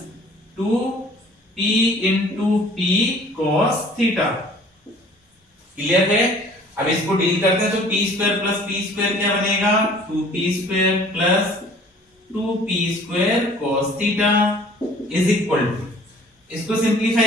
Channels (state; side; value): normal; both; correlation 0.52